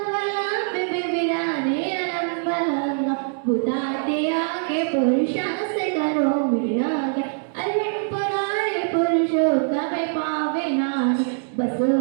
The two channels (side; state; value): left; silent; digital silence